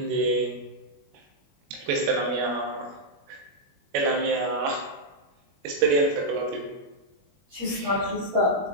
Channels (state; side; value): late; left; 21 ms